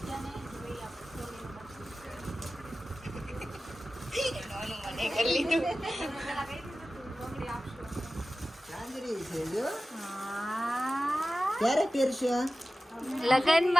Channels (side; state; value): both; normal; correlation 0.95